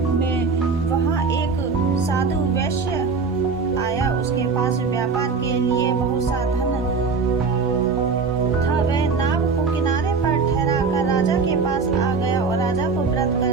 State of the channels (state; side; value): quieter; left; 4.8 dB